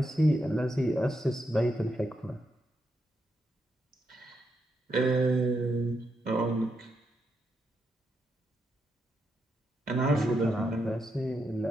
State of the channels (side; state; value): both; normal; correlation 0.82